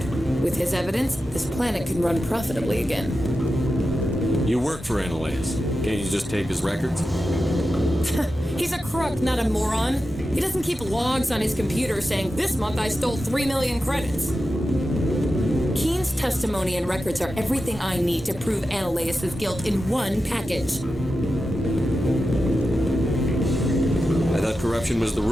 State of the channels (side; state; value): both; normal; correlation 0.91